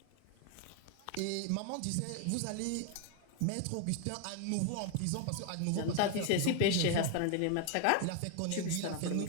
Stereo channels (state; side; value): different; both; correlation 0.00